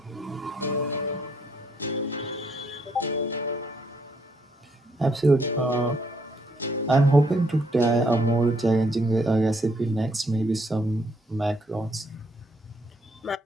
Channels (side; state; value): both; normal; correlation 0.71